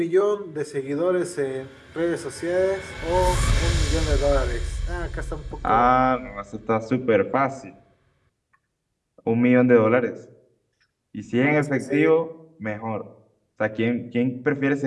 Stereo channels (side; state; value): both; identical; correlation 1.00